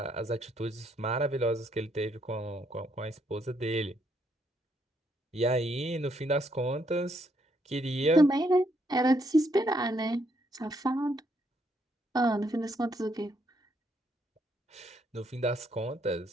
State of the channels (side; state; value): both; normal; correlation 0.73